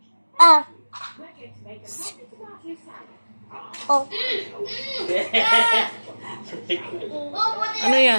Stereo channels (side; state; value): both; inverted; correlation -1.00